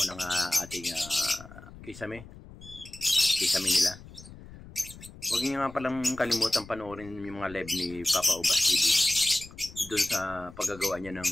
ng ating kisame nila. Huwag niyo nga palang kalimutan panoorin yung mga live ni Papa Ubas TV doon sa paggagawa niya ng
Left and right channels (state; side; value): noise; left; rumble, 17 dB below the sound